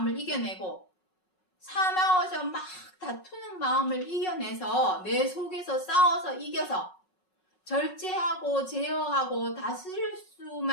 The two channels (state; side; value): late; right; 5.4 ms